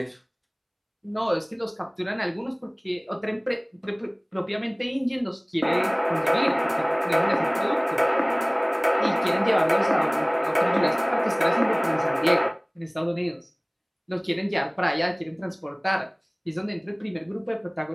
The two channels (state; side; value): identical; both; correlation 1.00